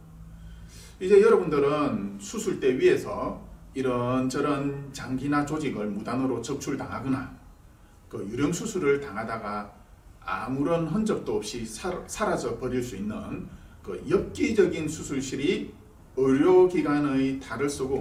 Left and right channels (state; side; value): identical; both; correlation 1.00